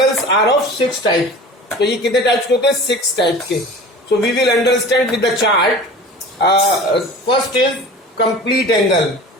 are of 6 types. तो ये कितने टाइप्स के होते हैं? 6 टाइप्स के. So we will understand with the chart. First is complete angle.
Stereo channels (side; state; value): both; normal; correlation 0.38